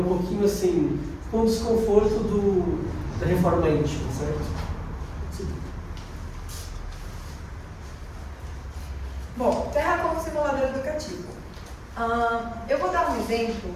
pouquinho assim, com o desconforto da reforma íntima, certo? Sim. Bom, Terra como simulador educativo. Eu vou dar um exemplo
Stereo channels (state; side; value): identical; both; correlation 1.00